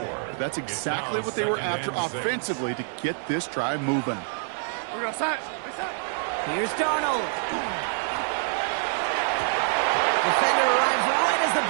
But that's exactly what they were after offensively to get this drive moving. Here's Darnold. Defender arrives right as the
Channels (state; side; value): silent; left; digital silence